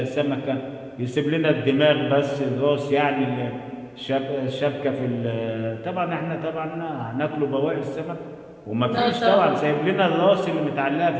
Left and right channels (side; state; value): both; identical; correlation 1.00